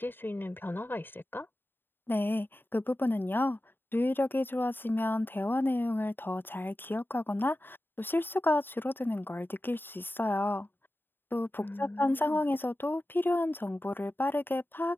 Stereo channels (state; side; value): late; right; 0.096 ms